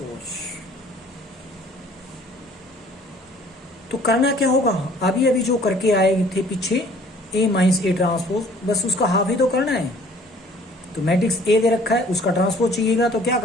तो करना क्या होगा, अभी अभी जो करके आए थे पीछे ए माइनस ए ट्रांसपोज, बस उसका हाफ ही तो करना है। तो मैट्रिक्स ए दे रखा है, उसका ट्रांसपोज चाहिएगा, तो क्या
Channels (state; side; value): normal; both; correlation 0.55